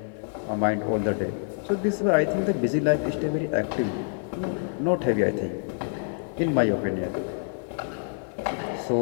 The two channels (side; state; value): right; silent; 60 dB below the other